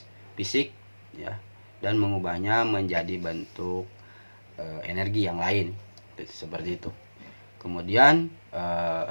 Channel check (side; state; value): both; inverted; correlation -1.00